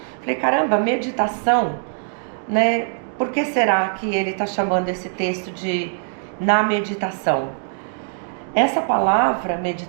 Falei, caramba, meditação, né? Por que será que ele está chamando esse texto de na meditação? Essa palavra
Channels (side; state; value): left; silent; digital silence